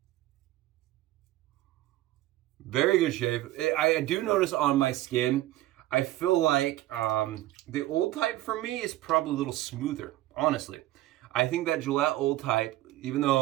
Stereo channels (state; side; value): quieter; left; 15.6 dB